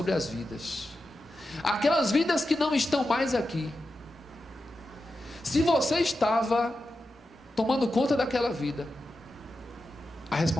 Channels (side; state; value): both; normal; correlation 0.90